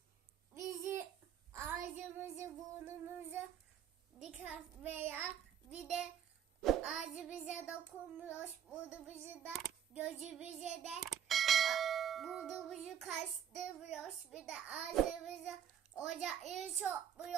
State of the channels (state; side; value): quieter; left; 9.1 dB